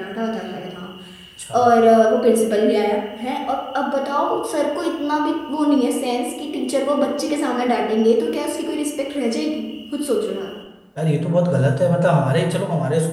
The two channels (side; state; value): both; identical; correlation 1.00